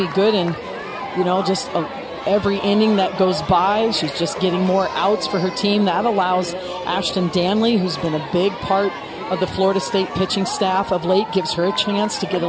Gooden, just every inning that goes by, she's just getting more outs for her team. That allows Ashton Danley, who's been a big part of the Florida State pitching staff of late, gives her a chance to get a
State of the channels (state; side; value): identical; both; correlation 1.00